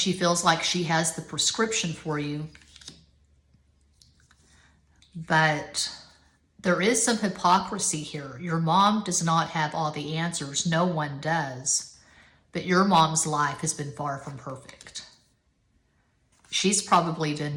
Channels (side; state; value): both; identical; correlation 1.00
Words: feels like she has the prescription for you. But there is some hypocrisy here. Your mom does not have all the answers. No one does. But your mom's life has been far from perfect. She's probably